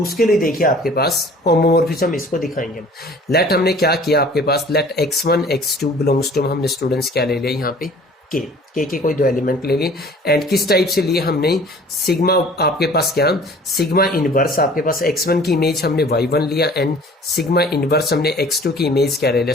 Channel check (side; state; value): both; normal; correlation 0.49